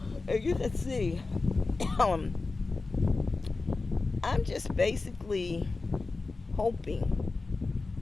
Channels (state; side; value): quieter; right; 3.7 dB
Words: you can see, I'm just basically hoping